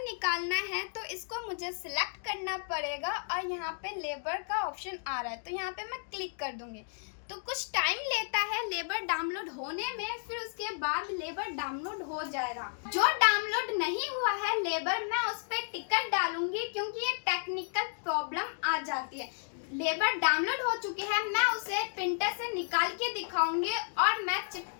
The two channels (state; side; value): silent; right; digital silence